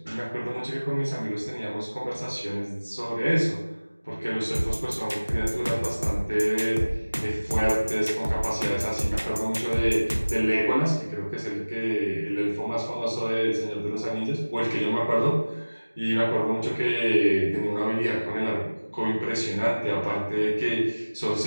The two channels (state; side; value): inverted; both; correlation -1.00